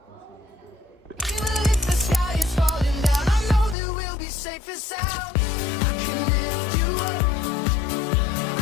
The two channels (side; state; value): right; drops out; at 3.8 s